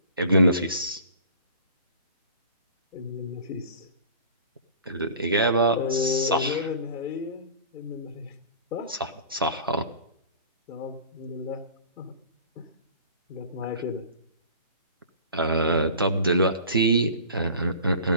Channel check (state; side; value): inverted; both; correlation -0.43